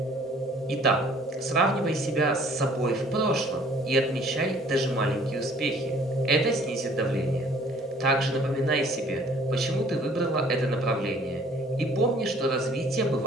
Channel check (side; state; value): both; normal; correlation 0.56